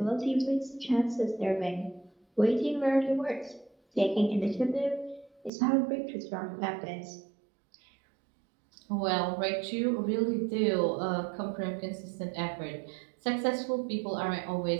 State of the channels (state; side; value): drops out; left; at 5.5 s